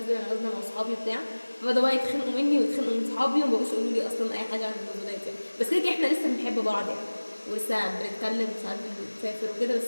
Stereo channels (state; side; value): inverted; both; correlation -1.00